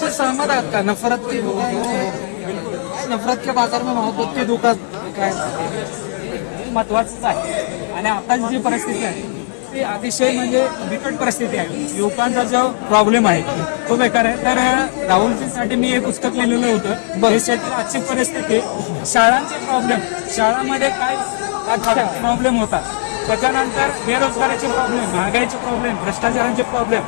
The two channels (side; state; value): right; silent; digital silence